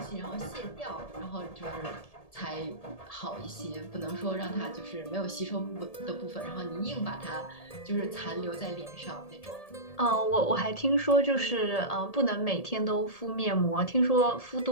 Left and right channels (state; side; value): late; right; 1.8 ms